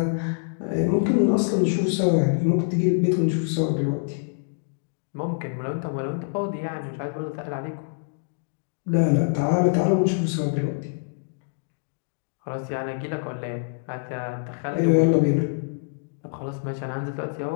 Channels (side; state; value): right; silent; digital silence